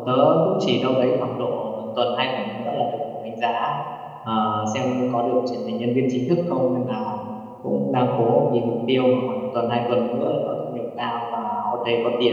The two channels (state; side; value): identical; both; correlation 1.00